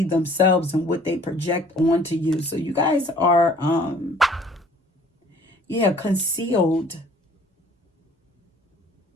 themselves and what they project onto you. So you guys are, concealed.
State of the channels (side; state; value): both; normal; correlation 0.54